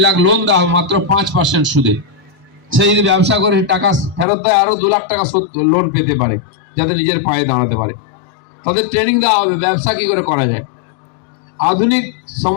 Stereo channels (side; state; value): right; drops out; at 4.2 s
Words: লাখ লোন দেওয়া হবে মাত্র 5% সুদে। সে যদি ব্যবসা করে টাকা ফেরত দেয়, আরো 2 লাখ টাকা লোন পেতে পারে, যাতে নিজের পায়ে দাঁড়াতে পারে। তাদের ট্রেনিং দেওয়া হবে ব্যবসা কি করে করা যায়, আধুনিক